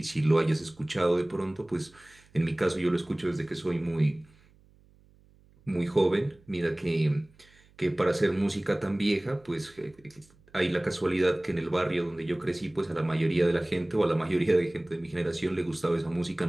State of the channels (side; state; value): right; noise; hum, 29 dB below the sound